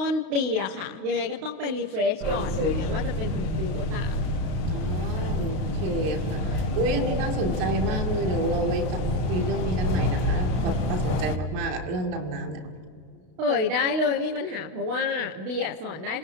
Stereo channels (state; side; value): late; left; 32 ms